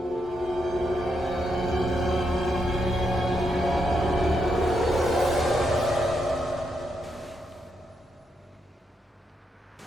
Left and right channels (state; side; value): normal; both; correlation 0.81